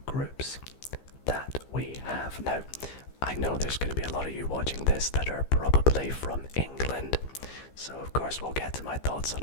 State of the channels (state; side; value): late; right; 15 ms